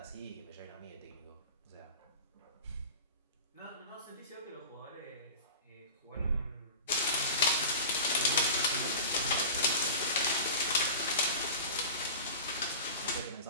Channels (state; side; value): inverted; both; correlation -0.33